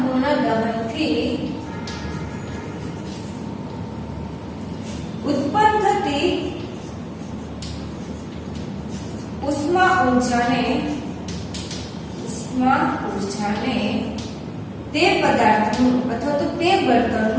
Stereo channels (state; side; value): identical; both; correlation 1.00